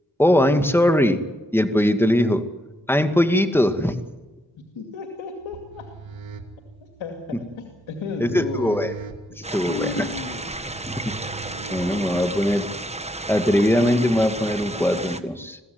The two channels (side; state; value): both; normal; correlation 0.79